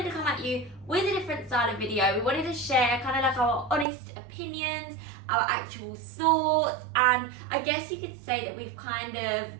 to come at you with a different style of video. We wanted to share kind of like our honest opinions, our actual thoughts, and I guess you could say that we've kind of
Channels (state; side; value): drops out; left; at 3.9 s